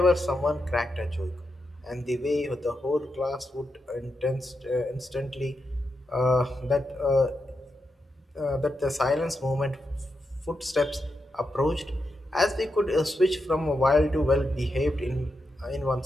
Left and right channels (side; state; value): both; normal; correlation 0.86